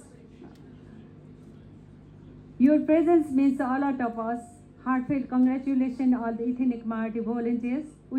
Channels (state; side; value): identical; both; correlation 1.00